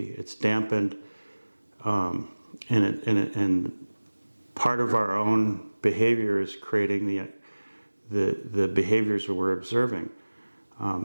It's dampened, and part of our own behavior is creating the behaviors that we're observing.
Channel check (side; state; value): both; inverted; correlation -1.00